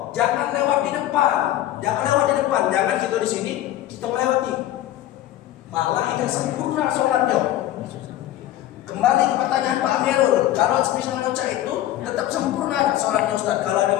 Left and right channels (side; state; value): right; quieter; 13.6 dB